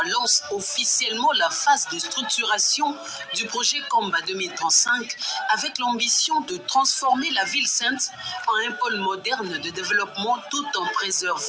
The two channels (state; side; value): identical; both; correlation 1.00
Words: lance officiellement la phase de structuration du projet Kamba 2035 avec l'ambition de transformer la ville sainte en un pôle moderne de développement tout en